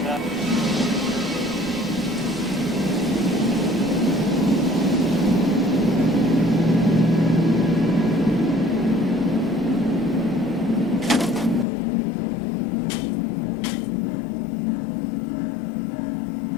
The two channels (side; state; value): right; drops out; at 11.7 s